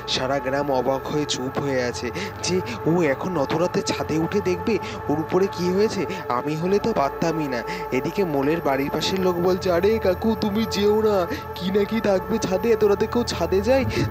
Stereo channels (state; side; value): identical; both; correlation 1.00